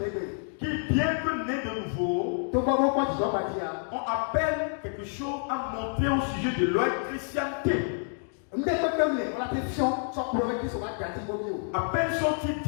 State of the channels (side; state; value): right; silent; 59 dB below the other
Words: qui, bien que nés de nouveau, on appelle quelque chose à monter au sujet de leur chrétienté. À peine sont-ils